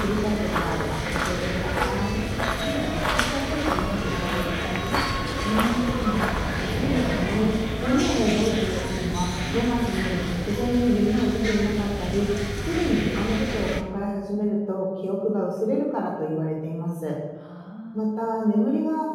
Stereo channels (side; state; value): both; identical; correlation 1.00